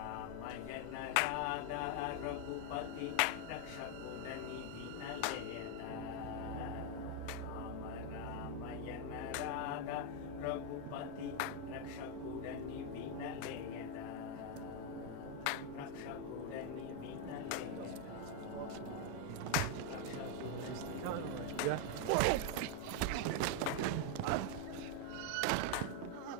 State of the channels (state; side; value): different; both; correlation 0.01